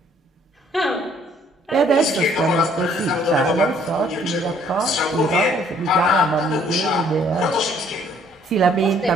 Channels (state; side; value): normal; both; correlation 0.62